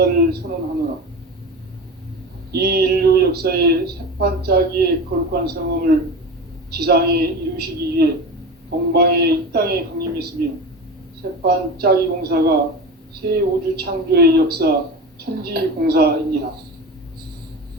선언하노라. 이 인류 역사의 새판짜기의 거룩한 성험을 지상에 이루시기 위해 동방의 이 땅에 강림했으며 새판짜기 공사가 새 우주 창조의 역사 천지공사이니라.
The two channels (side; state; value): both; normal; correlation 0.28